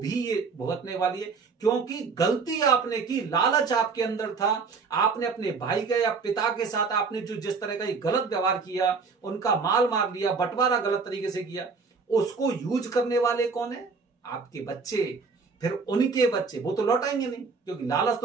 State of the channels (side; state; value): left; quieter; 4.8 dB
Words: ये भुगतने वाली है। क्योंकि गलती आपने की, लालच आपके अंदर था, आपने अपने भाई के या पिता के साथ आपने जो जिस तरह का ये गलत व्यवहार किया, उनका माल मार लिया, बंटवारा गलत तरीके से किया, उसको यूज करने वाले कौन है? आपके बच्चे, फिर उनके बच्चे, वो तो लौटाएंगे नहीं, क्योंकि लालच